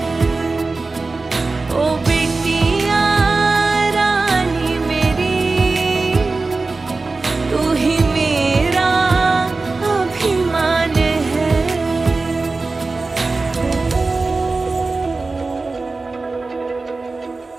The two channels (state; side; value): quieter; left; 3.7 dB